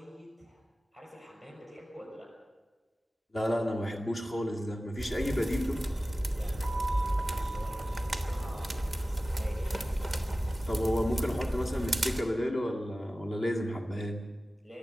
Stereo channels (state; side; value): normal; both; correlation 0.96